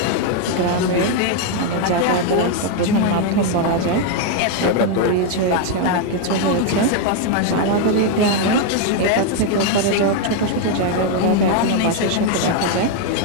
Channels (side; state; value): both; different; correlation 0.01